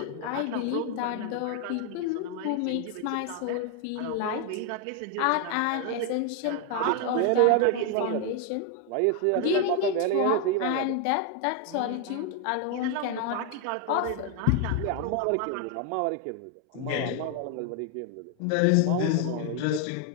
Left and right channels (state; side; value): different; both; correlation 0.00